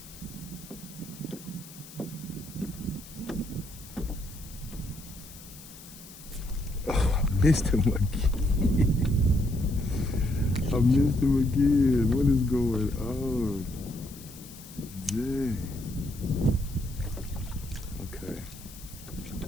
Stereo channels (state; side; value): noise; left; hiss, 18 dB below the sound